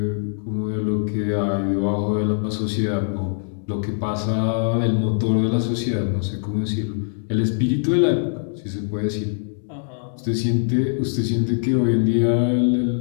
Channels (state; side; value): silent; right; digital silence